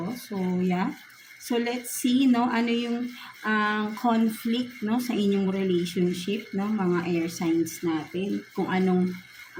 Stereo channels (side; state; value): both; identical; correlation 1.00